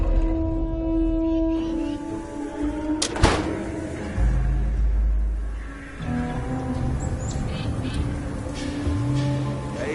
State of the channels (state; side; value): identical; both; correlation 1.00